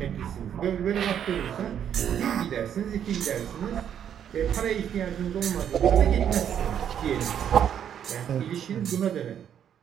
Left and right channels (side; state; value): left; quieter; 9.1 dB